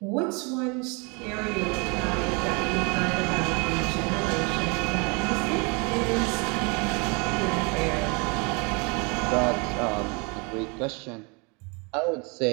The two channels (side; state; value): left; quieter; 31.0 dB